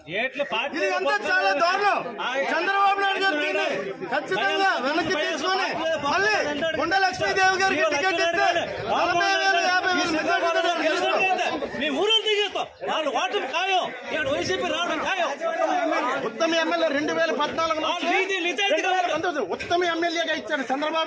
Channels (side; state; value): both; identical; correlation 1.00